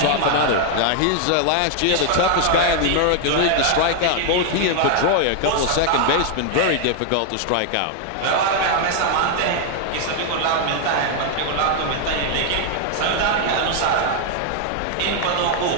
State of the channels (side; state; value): both; different; correlation 0.00